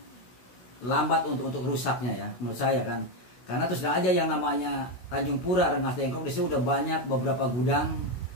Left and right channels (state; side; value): late; right; 16 ms